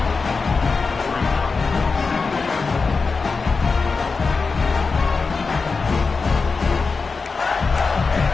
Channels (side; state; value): right; quieter; 4.5 dB